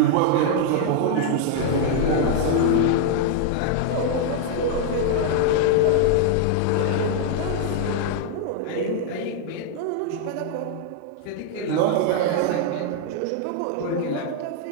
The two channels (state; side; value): different; both; correlation 0.00